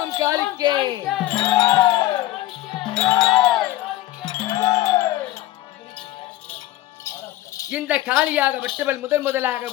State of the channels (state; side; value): quieter; right; 15.4 dB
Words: காளிக்கே. இந்த காளியாக வெட்டுவல் முதலாக